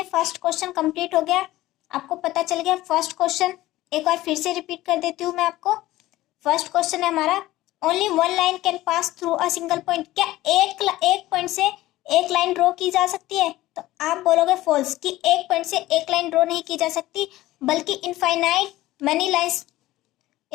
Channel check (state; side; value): quieter; right; 16.6 dB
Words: फर्स्ट क्वेश्चन कंप्लीट हो गया, आपको पता चल गया फर्स्ट क्वेश्चन। एक बार फिर से रिपीट कर देती हूँ मैं आपको। फर्स्ट क्वेश्चन है हमारा, only one line can pass through a single point. क्या एक पॉइंट से एक लाइन ड्रॉ की जा सकती है? तो आप बोलोगे फॉल्स, कि एक पॉइंट से एक लाइन ड्रॉ नहीं की जा सकती, बल्कि infinite